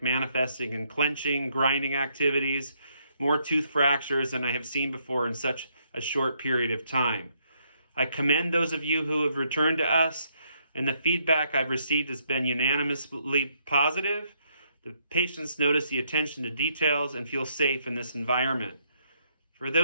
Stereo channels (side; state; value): both; inverted; correlation -0.73